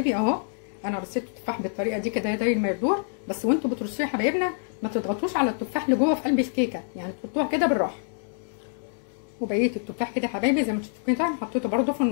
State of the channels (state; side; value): silent; right; digital silence